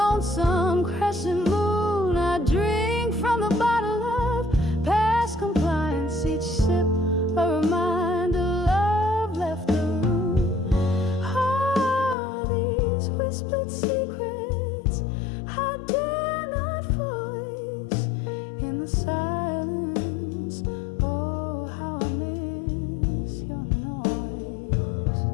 crescent moon, I drink from the bottle of past compliance. Each sip a reminder love left the room. All these whispered secrets I dare not voice in the silence. Oh, how I miss your noise.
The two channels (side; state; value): right; drops out; at 12.2 s